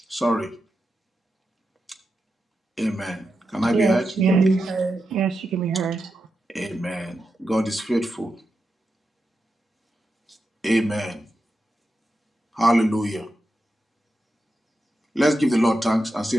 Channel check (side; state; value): both; normal; correlation 0.88